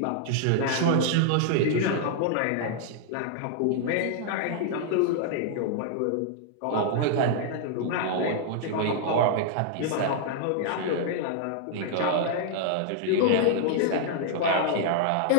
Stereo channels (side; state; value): both; different; correlation -0.01